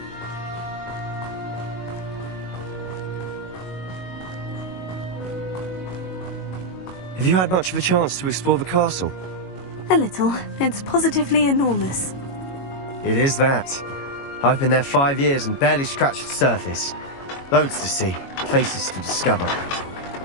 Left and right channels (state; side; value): late; right; 22 ms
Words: Have you had much of a chance to explore the castle? A little. It's positively enormous. It is that. I've been there 5 years and barely scratched the surface. Loads to see, places to discover.